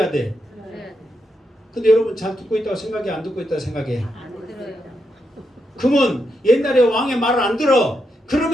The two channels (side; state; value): both; normal; correlation 0.83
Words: 돼? 근데 여러분 잘 듣고 있다고 생각해, 안 듣고 있다고 생각해? 안 들어요. 그러면 옛날에 왕의 말을 안 들어.